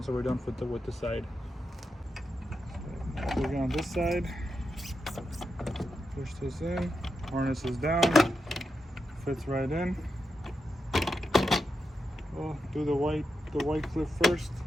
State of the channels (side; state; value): both; normal; correlation 0.87